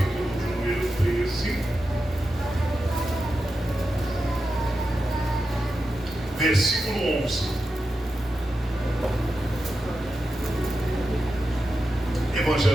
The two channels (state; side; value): normal; both; correlation 0.90